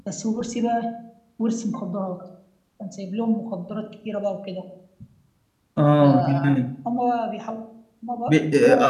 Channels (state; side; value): identical; both; correlation 1.00